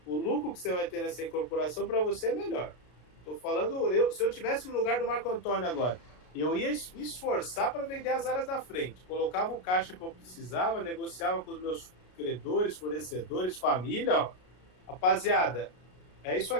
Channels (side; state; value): right; late; 33 ms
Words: o lucro que você vai ter nessa incorporação para você é melhor. Estou falando, se eu tivesse no lugar do Marco Antônio agora, eu ia me esforçar para vender as áreas da frente. Colocava o caixa que eu precisava, negociava com os meus credores, fornecedores, família. Ó. Rapaziada, é isso